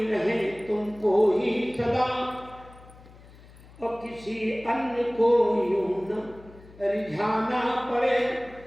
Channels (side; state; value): left; noise; hum, 22 dB below the sound